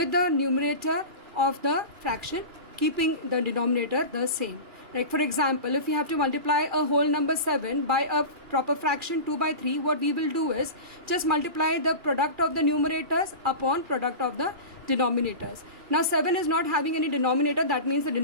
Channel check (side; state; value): left; late; 2.4 ms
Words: the numerator of the fraction, keeping the denominator the same. Like for example, if we have to multiply a whole number 7 by a proper fraction 2 by 3, what we will do is just multiply the product of the numerators upon product of the denominators. Now 7 is not having any denominator, that means the